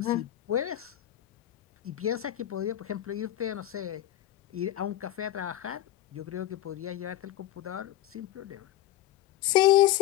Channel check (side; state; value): right; quieter; 13.6 dB